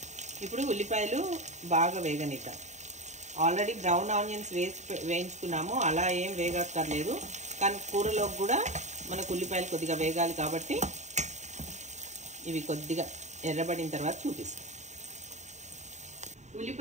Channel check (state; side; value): late; left; 0.34 ms